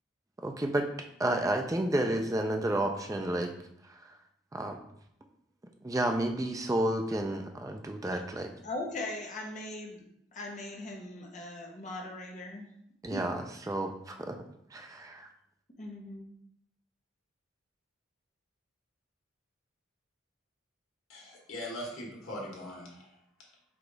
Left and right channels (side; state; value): both; normal; correlation 0.72